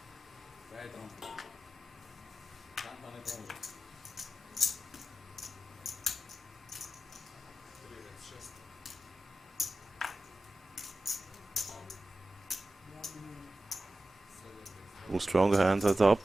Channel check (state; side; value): normal; both; correlation 0.94